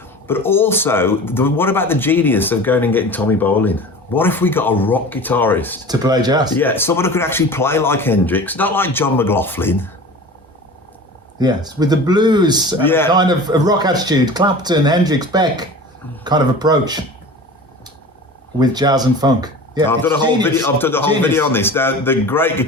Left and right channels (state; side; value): normal; both; correlation 0.37